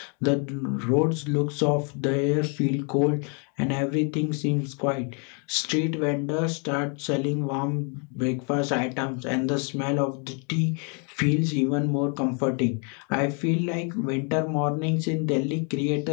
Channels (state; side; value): quieter; right; 37.4 dB